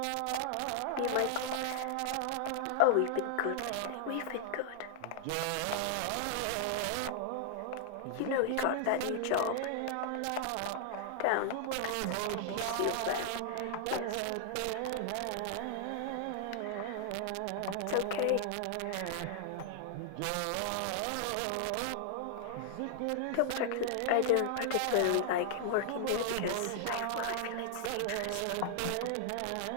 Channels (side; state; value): both; different; correlation 0.00